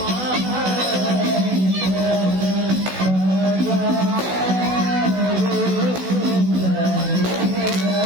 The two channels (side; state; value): left; late; 16 ms